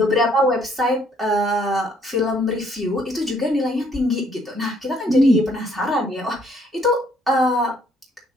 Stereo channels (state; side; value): normal; both; correlation 0.65